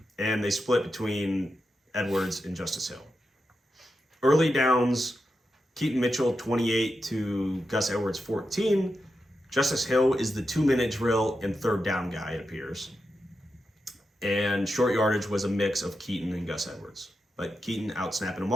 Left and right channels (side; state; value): both; normal; correlation 0.88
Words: And they split between Edwards and Justice Hill. Early downs, Keaton Mitchell 28 to Gus Edwards 14. Justice Hill is the 2-minute drill and third down guy, it appears. And short yardage was a mix of Keaton and Gus Edwards. But Keaton out-snapping them